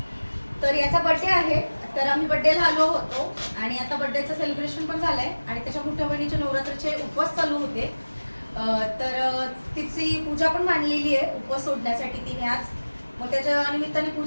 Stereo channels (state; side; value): inverted; both; correlation -1.00